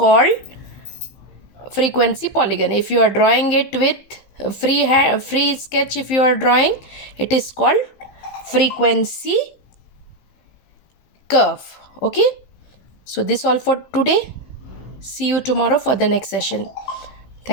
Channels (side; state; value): right; late; 15 ms